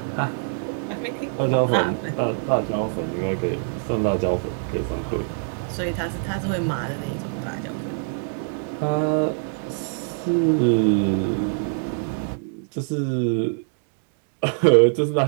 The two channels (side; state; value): left; silent; digital silence